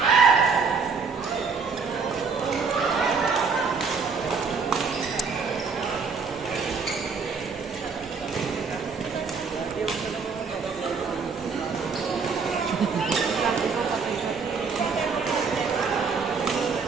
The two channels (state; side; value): quieter; left; 5.2 dB